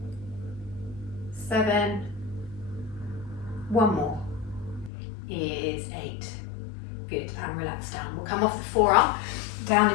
7. One more is 8. Good, and relax down. We'll come off the forearm down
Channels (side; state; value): right; drops out; at 4.9 s